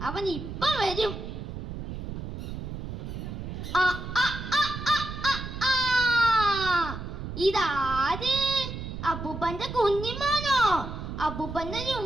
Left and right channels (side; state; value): right; noise; rumble, 7 dB below the sound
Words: അവൻ ഇപ്പൊ വരും. ഇതാര്? അപ്പൂപ്പന്റെ കുഞ്ഞിമാനോ? അപ്പൂപ്പന്റെ